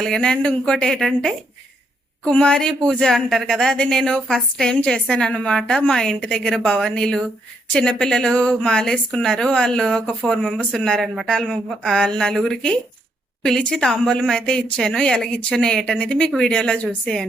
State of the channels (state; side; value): normal; both; correlation 0.76